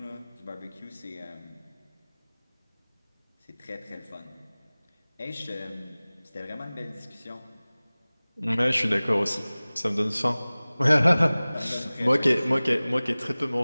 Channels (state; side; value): inverted; both; correlation -0.99